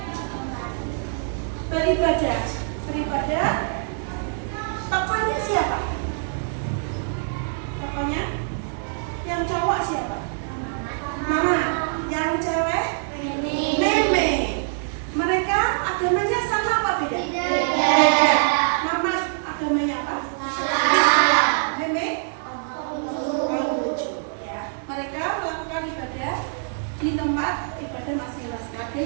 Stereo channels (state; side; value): silent; left; digital silence